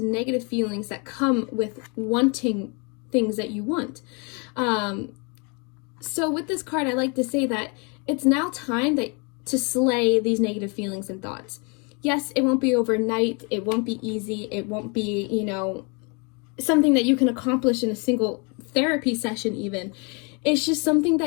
negative feelings that come with wanting things that you want. So with this card, I like to say that it's now time to slay these negative feelings and thoughts. Yes, it won't be overnight. It won't be easy. It won't be, something that you can accomplish in a single therapy session even. It's just something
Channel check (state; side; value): quieter; right; 33.0 dB